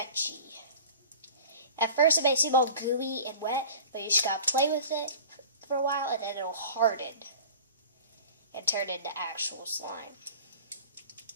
At first it may seem all gooey and wet, but you just gotta play with it for a while and then it'll harden and turn into actual slime.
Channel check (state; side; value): inverted; both; correlation -0.40